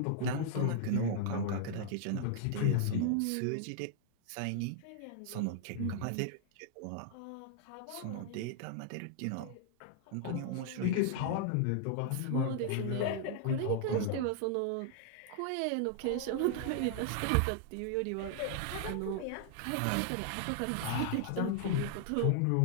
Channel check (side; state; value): both; different; correlation -0.01